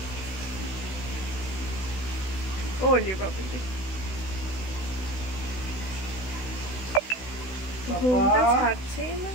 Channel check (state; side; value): late; right; 16 ms